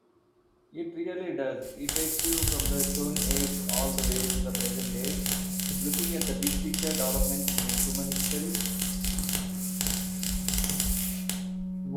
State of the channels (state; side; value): identical; both; correlation 1.00